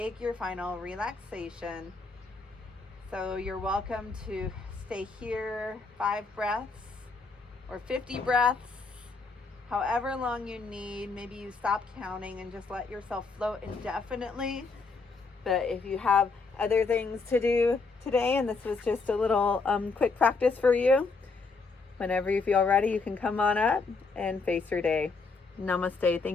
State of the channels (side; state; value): right; quieter; 4.2 dB